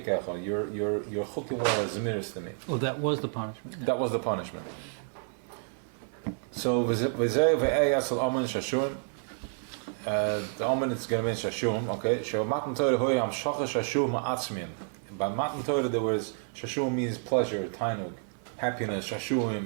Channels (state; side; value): silent; left; 57 dB below the other